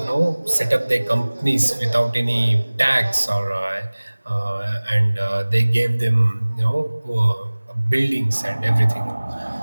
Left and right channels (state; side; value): inverted; both; correlation -1.00